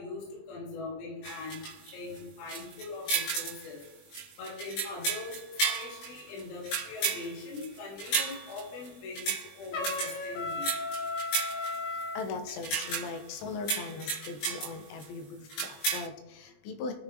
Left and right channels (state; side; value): late; right; 20 ms